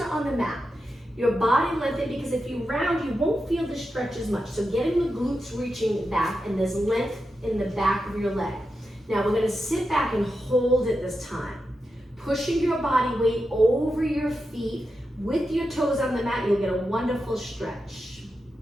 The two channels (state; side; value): normal; both; correlation 0.89